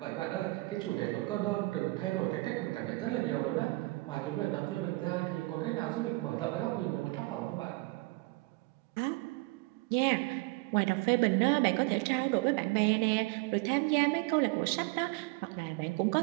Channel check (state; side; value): quieter; left; 23.2 dB